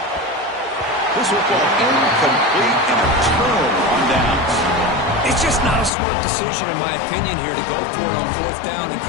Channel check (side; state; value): right; drops out; at 5.9 s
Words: This football incomplete and a turnover on downs. It's just not a smart decision, in my opinion, here to go for it on fourth down. And,